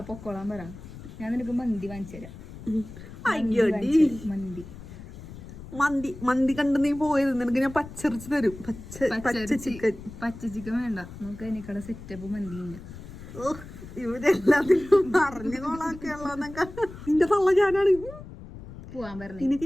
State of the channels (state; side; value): noise; left; rumble, 14 dB below the sound